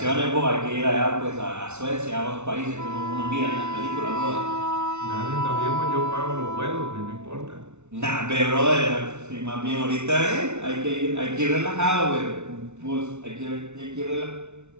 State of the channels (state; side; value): late; left; 0.82 ms